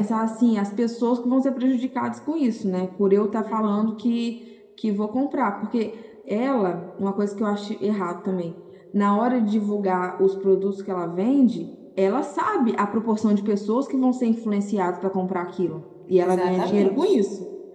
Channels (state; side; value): identical; both; correlation 1.00